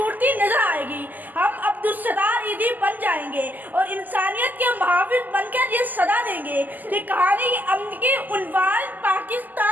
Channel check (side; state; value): left; late; 0.084 ms